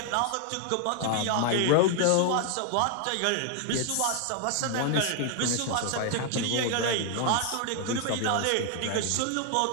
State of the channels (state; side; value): different; both; correlation 0.00